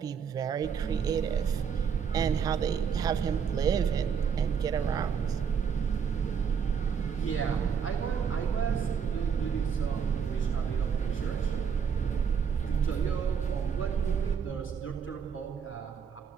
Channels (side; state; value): left; quieter; 6.9 dB